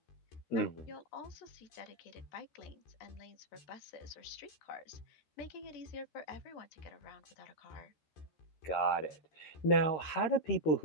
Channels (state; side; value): late; right; 13 ms